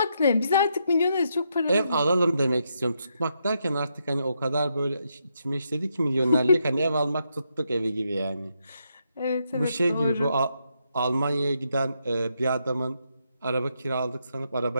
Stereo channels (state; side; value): inverted; both; correlation -0.80